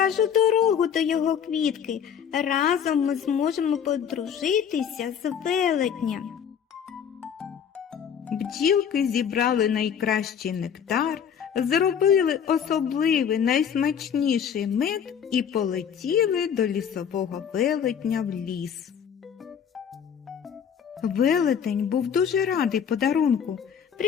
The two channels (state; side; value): quieter; right; 7.9 dB